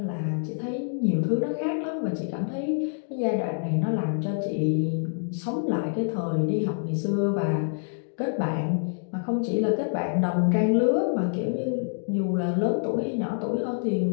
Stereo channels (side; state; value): right; silent; digital silence